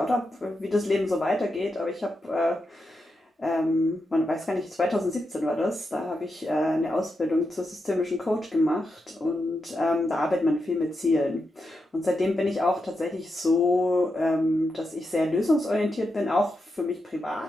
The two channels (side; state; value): both; normal; correlation 0.86